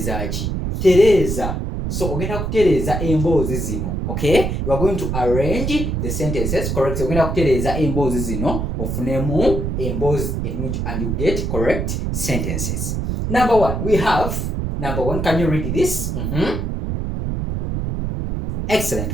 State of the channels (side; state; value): right; noise; rumble, 2 dB below the sound